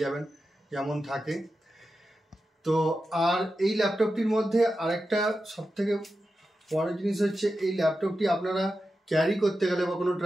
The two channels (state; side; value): normal; both; correlation 0.91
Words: যাবেন যেমন থাকে। তো আর এই ল্যাপটপটির মধ্যে আরেকটা সবথেকে বড় জিনিস হচ্ছে এই ল্যাপটপটি আপনারা ক্যারি করতে গেলে বা কোনো